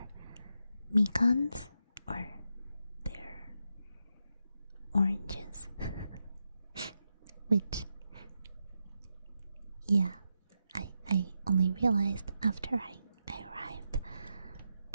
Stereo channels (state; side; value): inverted; both; correlation -0.86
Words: mikans or their oranges. Which, yeah, I only realized after I arrived,